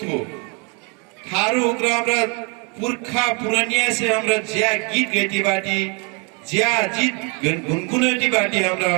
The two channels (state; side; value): quieter; left; 30.3 dB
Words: थारू उग्र हमरा पुरखा पुरानिया से हमरा ज्या गीत गैती बाटी ज्या जीत गुनगुनाती बाटी हमरा